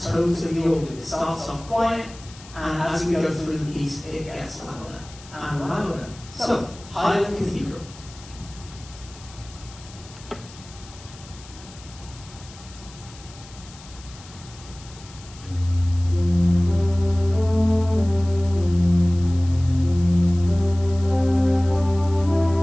tones of the organ. It starts off quiet, and as we go through the piece, it gets louder and louder. So, Highland Cathedral.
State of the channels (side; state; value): left; noise; hiss, 20 dB below the sound